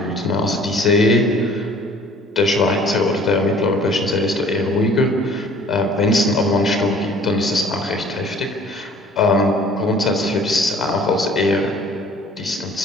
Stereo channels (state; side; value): normal; both; correlation 0.53